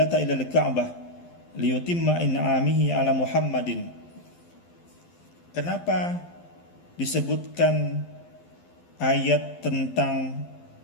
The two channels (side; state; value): right; late; 12 ms